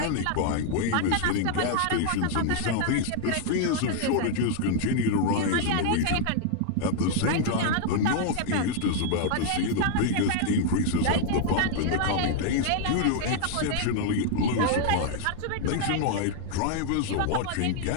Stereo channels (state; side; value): different; both; correlation 0.00